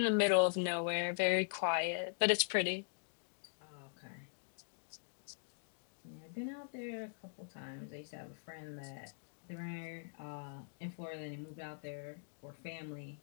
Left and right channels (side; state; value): right; silent; digital silence